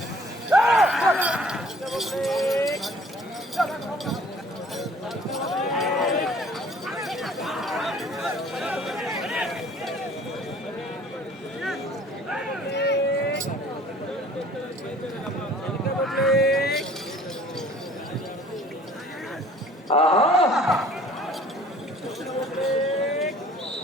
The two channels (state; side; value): normal; both; correlation 0.53